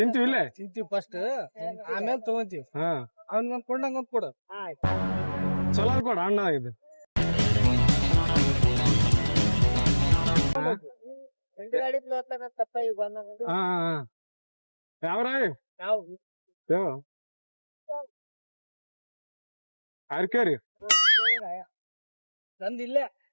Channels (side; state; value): both; inverted; correlation -1.00